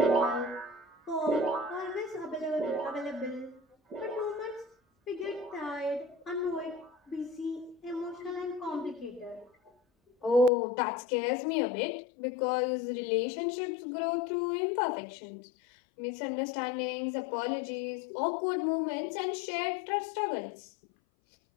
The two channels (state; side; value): drops out; right; at 10.5 s